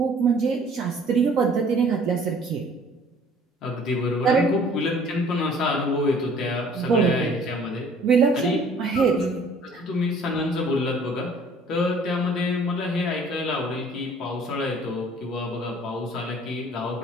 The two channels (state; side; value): normal; both; correlation 0.54